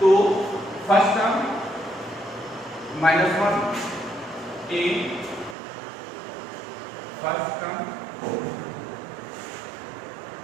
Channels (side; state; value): left; drops out; at 5.6 s